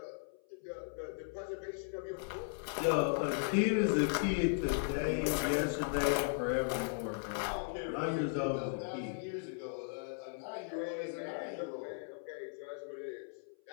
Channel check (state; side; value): silent; right; 53 dB below the other